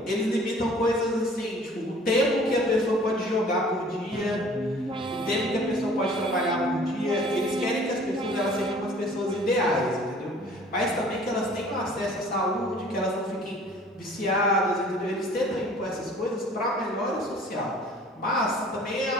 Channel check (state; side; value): normal; both; correlation 0.51